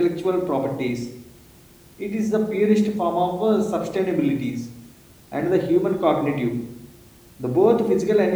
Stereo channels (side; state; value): both; identical; correlation 1.00